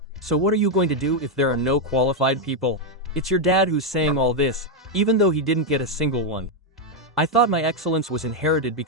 so what are you going to do if there are no qualified people? It's your dad who's saying all this, even though he didn't get a single one. I thought my excellence was inherited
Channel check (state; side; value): normal; both; correlation 0.02